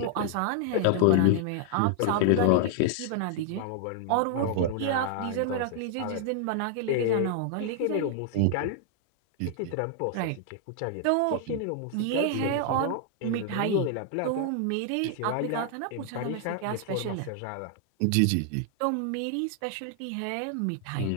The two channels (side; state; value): both; different; correlation 0.00